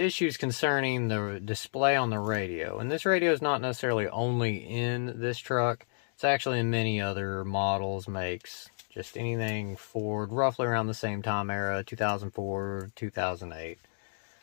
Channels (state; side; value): silent; right; digital silence